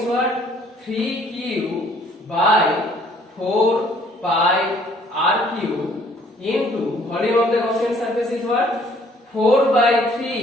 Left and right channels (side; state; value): both; normal; correlation 0.60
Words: what? 3Q by 4 pi R cube into volume of the Gaussian surface is what? 4 by